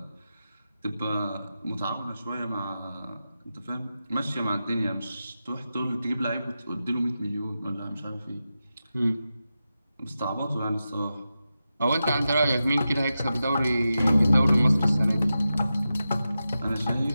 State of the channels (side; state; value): both; inverted; correlation -0.91